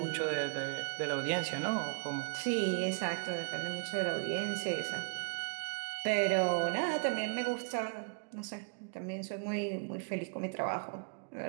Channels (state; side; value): quieter; left; 38.7 dB